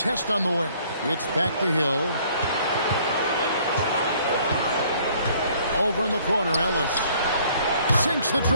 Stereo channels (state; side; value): inverted; both; correlation -0.59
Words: on the wing. It's back to Hill. Over in the corner, Ellis. Sinks the